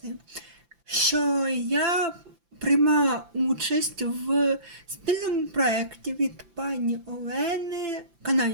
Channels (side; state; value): left; late; 5.9 ms